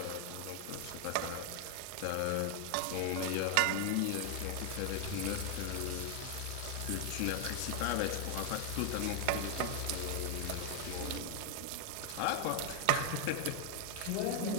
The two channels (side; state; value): both; different; correlation 0.00